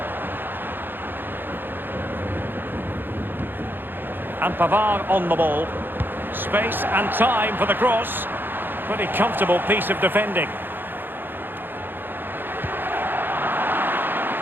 And Pavard on the ball. Space and time for the cross. Pretty comfortable piece of defending.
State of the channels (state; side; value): late; left; 0.096 ms